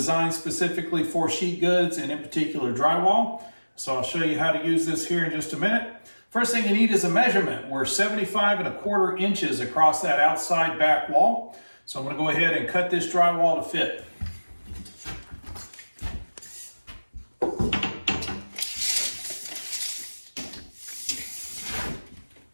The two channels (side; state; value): both; inverted; correlation -1.00